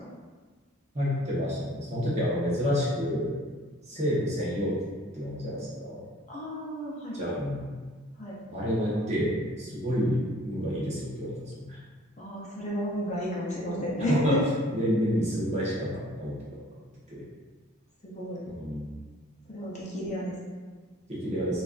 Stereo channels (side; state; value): both; normal; correlation 0.54